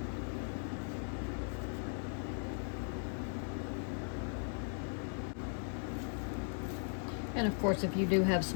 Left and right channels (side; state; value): right; silent; 52 dB below the other